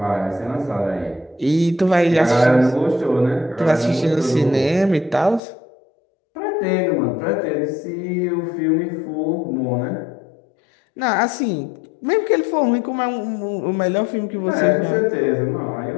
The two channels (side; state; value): right; drops out; at 5.4 s